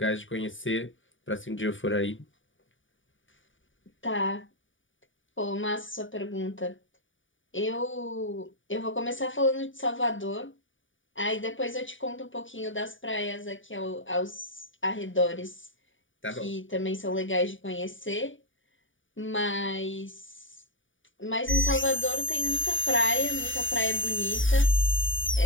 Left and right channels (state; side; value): late; right; 0.57 ms